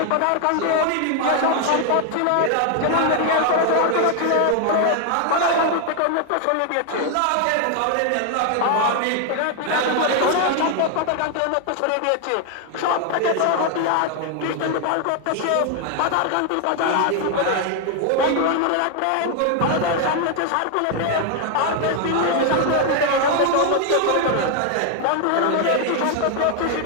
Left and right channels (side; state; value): both; different; correlation 0.01